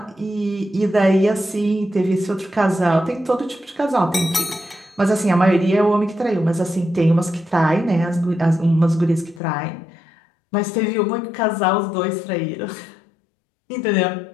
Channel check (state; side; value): drops out; right; at 9.4 s